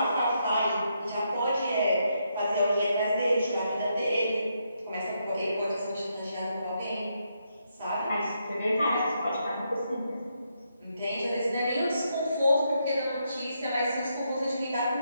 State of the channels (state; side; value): inverted; both; correlation -0.79